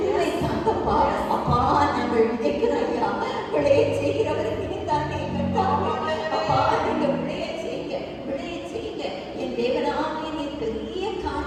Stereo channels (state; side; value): identical; both; correlation 1.00